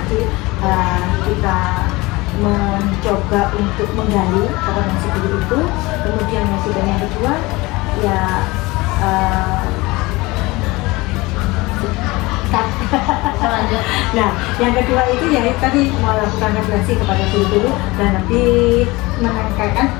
kita mencoba untuk menggali kompetensi guru itu, kemudian yang kedua ya nah yang kedua itu ya tadi melakukan refleksi kepada guru-guru dan lebih menekankan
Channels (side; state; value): right; quieter; 22.1 dB